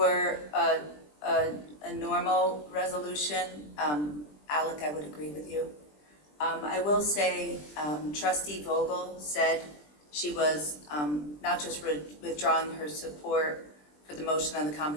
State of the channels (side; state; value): right; late; 20 ms